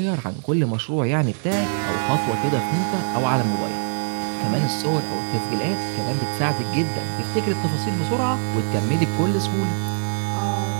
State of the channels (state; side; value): silent; left; digital silence